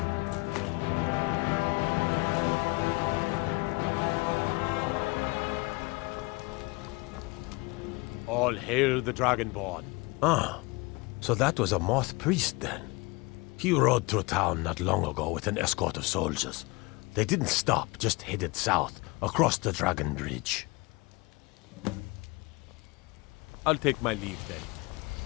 All hail the Dragonborn. Ah, so that was a moth priest then. He rode through town not long ago with an escort of soldiers. They didn't stop, just headed south, across the Dragon Bridge. I'll take my leave then.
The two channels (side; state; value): right; quieter; 25.2 dB